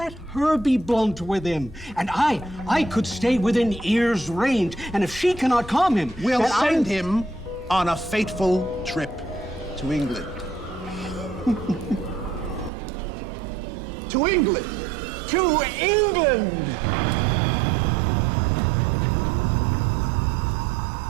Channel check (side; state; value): left; drops out; at 12.7 s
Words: her be blunt with him. And I could stay within ear's range. And if she cannot calm him, We'll then send him on a fateful trip to England. To England! To England!